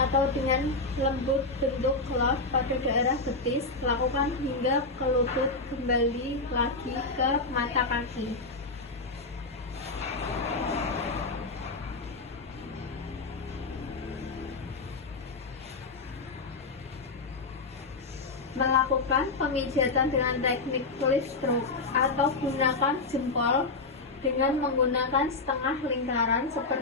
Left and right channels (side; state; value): right; quieter; 3.6 dB